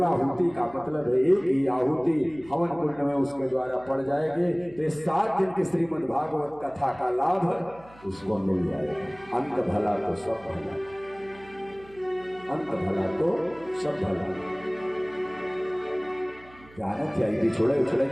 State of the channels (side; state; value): right; noise; hum, 23 dB below the sound